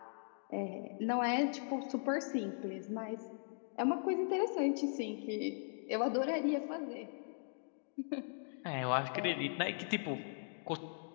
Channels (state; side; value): silent; right; digital silence